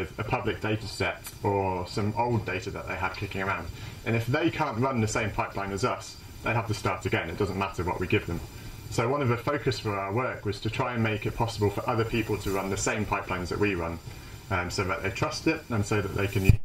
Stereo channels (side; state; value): both; identical; correlation 1.00